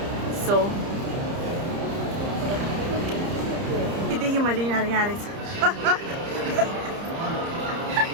सो देखि मैले यिनीहरू यहाँ रहेछ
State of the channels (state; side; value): late; left; 30 ms